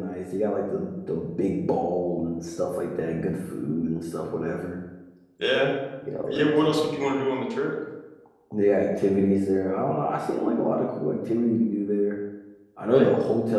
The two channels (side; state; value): both; identical; correlation 1.00